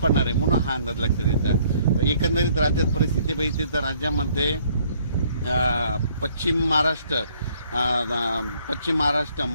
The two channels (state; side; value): inverted; both; correlation -0.63